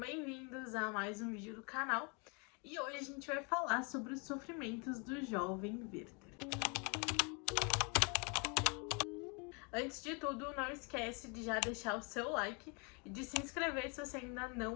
a mais um vídeo do canal. E hoje a gente vai falar sobre os sofrimentos do jovem Werther. Antes de tudo, não esquece de já deixar o seu like e de se inscrever se você ainda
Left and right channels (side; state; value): right; quieter; 33.6 dB